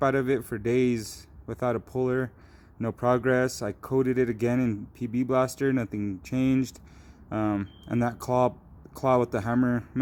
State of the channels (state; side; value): identical; both; correlation 1.00